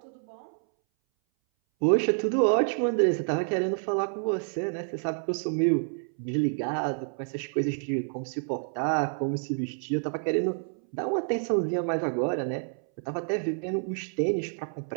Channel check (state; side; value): silent; left; 59 dB below the other